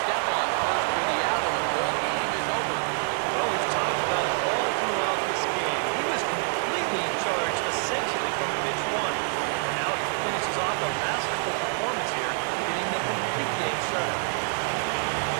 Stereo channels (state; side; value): silent; left; 60 dB below the other